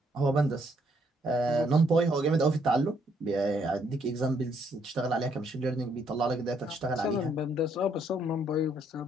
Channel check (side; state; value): both; normal; correlation 0.71